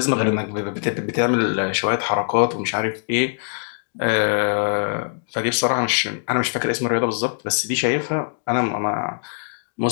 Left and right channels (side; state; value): right; silent; digital silence